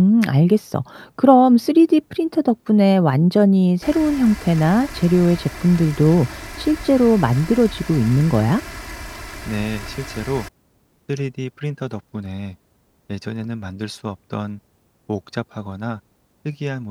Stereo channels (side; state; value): both; identical; correlation 1.00